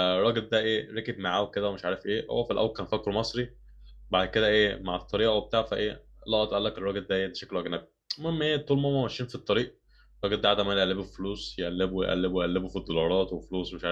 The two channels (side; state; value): both; identical; correlation 1.00